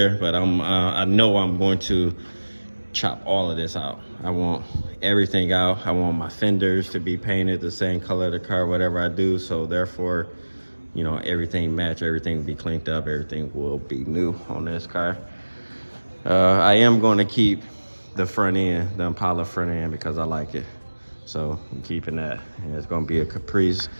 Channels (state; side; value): inverted; both; correlation -1.00